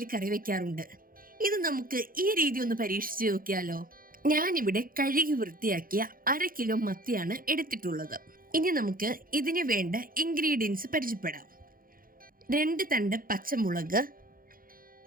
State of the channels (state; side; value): late; left; 0.41 ms